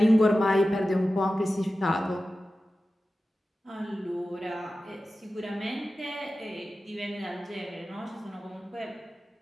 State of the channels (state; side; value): normal; both; correlation 0.94